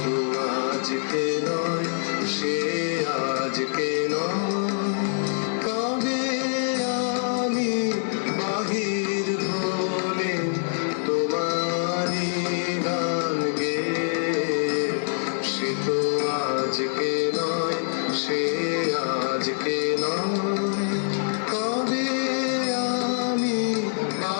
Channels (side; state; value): right; silent; 62 dB below the other